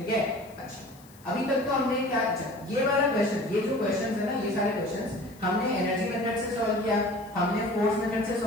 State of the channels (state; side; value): noise; left; hiss, 26 dB below the sound